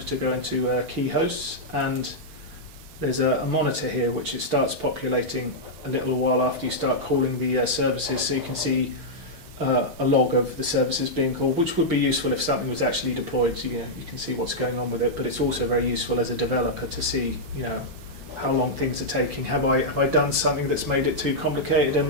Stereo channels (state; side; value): late; left; 6.0 ms